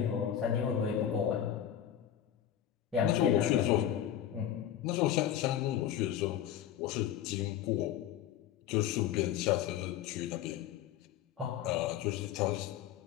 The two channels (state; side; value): quieter; right; 10.7 dB